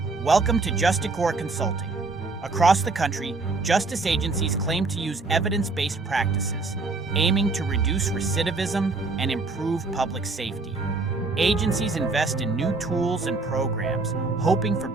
Welcome to Justicore Consulting. Across the country, justice agencies claim to use evidence-based practices, aiming to reduce recidivism and improve public safety. Agencies invest in new tools and programs, hoping for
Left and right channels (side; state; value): left; quieter; 3.7 dB